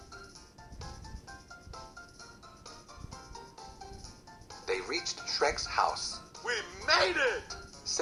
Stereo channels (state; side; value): identical; both; correlation 1.00